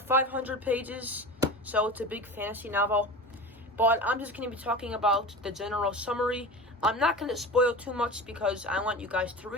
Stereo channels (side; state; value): both; normal; correlation 0.31